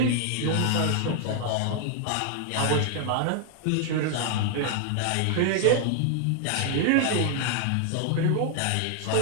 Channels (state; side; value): different; both; correlation 0.00